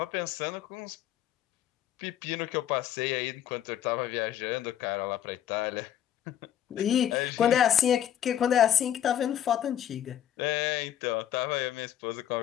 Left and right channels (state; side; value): quieter; right; 10.6 dB